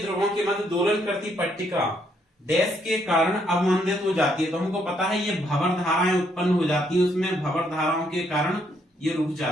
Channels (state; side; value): normal; both; correlation 0.72